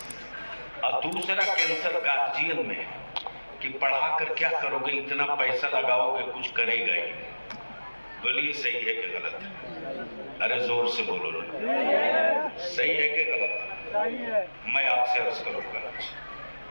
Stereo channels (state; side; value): inverted; both; correlation -1.00